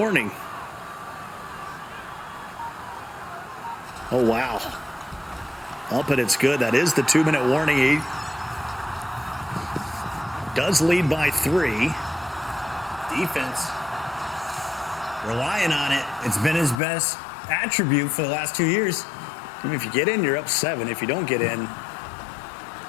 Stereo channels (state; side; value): drops out; right; at 16.8 s